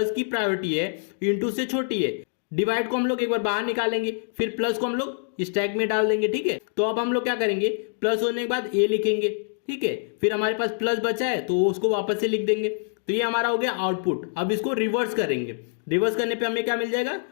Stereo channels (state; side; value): silent; right; digital silence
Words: की प्रायोरिटी है इंटू से छोटी है। डिवाइड को हम लोग एक बार बाहर निकालेंगे, फिर प्लस को हम लोग स्टैक में डाल देंगे। ठीक है, तो अब हम लोग क्या करेंगे? प्लस होने के बाद ए लिखेंगे। ठीक है, फिर हमारे पास प्लस बचा है तो उसको वापस से लिख देंगे। तो ये हमारा हो गया आउटपुट। अब इसको रिवर्स करेंगे। रिवर्स करने पे हमें क्या मिल जाएगा?